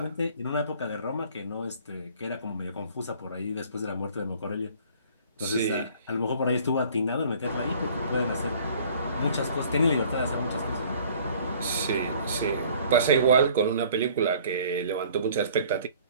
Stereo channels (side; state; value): both; inverted; correlation -0.53